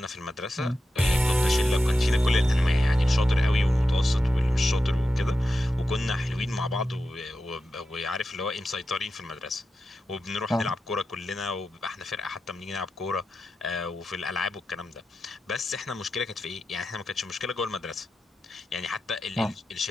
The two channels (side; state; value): both; normal; correlation 0.90